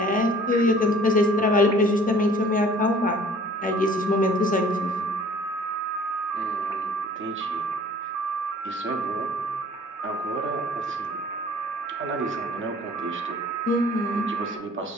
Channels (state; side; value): normal; both; correlation 0.51